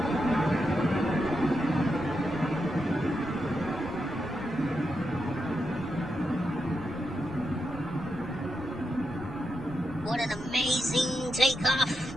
What an amazing takeoff.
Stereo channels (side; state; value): left; noise; rumble, 15 dB below the sound